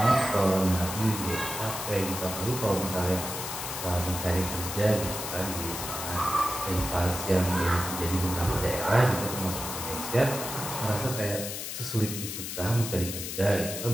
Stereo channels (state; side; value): noise; left; hiss, 6 dB below the sound